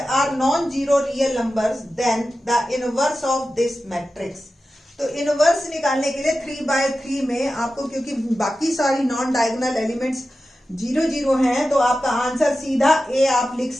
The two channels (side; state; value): both; normal; correlation 0.93